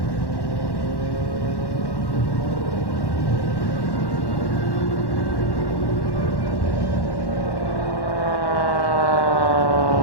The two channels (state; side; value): late; right; 1.1 ms